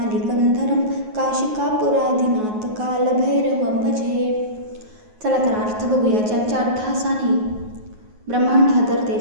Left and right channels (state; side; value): late; left; 9.4 ms